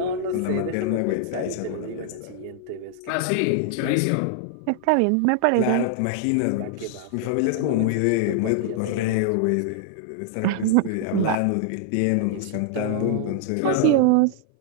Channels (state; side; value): different; both; correlation -0.01